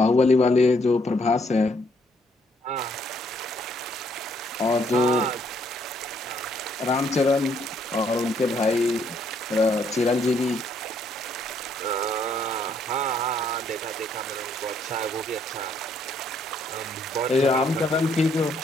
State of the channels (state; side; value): normal; both; correlation 0.69